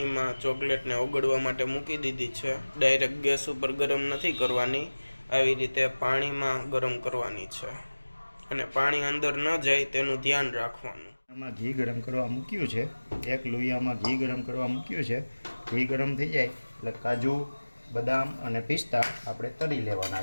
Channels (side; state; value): both; inverted; correlation -1.00